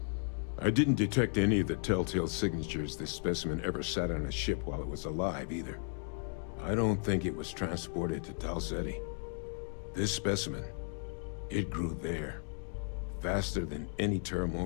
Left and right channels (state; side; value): silent; right; 54 dB below the other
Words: I didn't detect any of the telltale signatures this specimen ever sat on a ship while it was alive, either. I don't think it was transported to Tau Ceti. This specimen, it grew there, faster than any